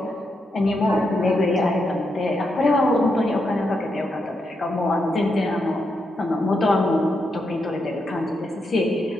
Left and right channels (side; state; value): both; normal; correlation 0.83